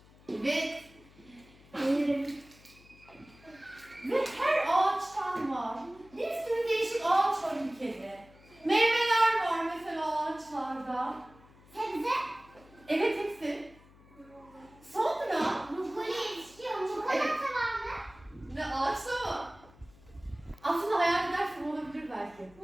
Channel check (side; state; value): left; noise; hum, 25 dB below the sound